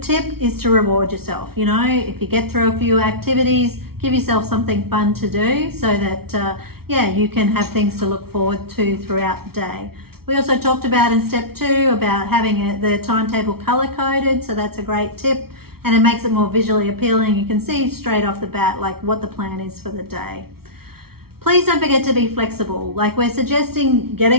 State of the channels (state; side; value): late; left; 0.94 ms